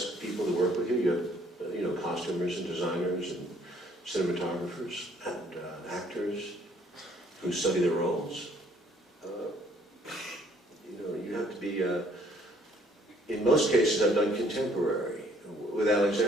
people to work with you. You have, costumers and designers and cinematographers and actors who study their roles. You have to be. In most cases, I've done contemporary. With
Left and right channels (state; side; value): normal; both; correlation 0.62